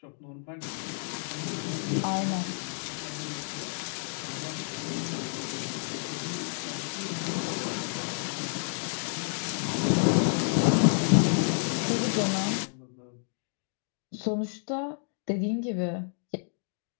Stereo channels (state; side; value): silent; right; digital silence